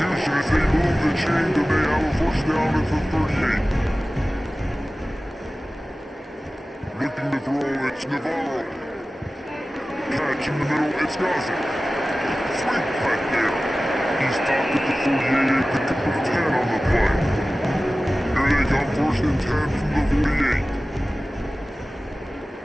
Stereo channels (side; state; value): both; normal; correlation 0.96